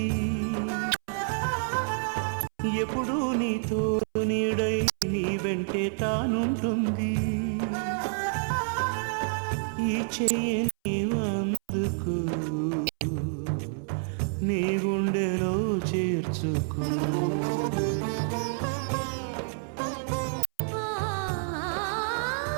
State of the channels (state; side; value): silent; left; 59 dB below the other